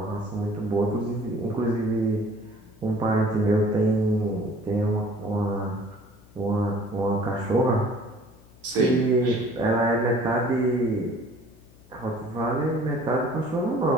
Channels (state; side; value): noise; left; hum, 25 dB below the sound